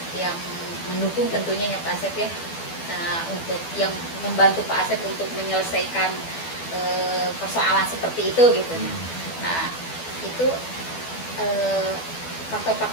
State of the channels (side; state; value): right; late; 12 ms